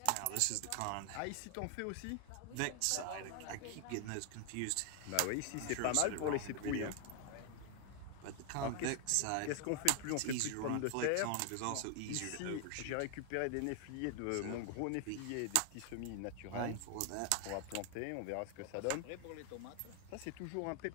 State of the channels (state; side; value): different; both; correlation 0.00